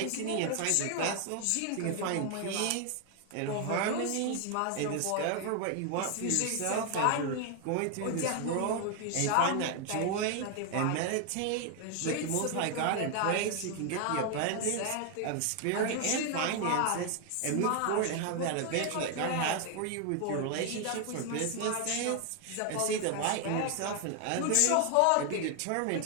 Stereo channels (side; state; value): both; different; correlation 0.00